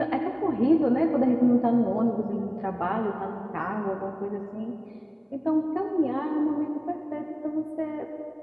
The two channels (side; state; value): both; identical; correlation 1.00